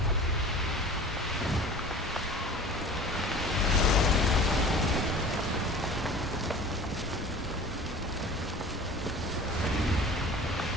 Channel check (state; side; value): normal; both; correlation 0.41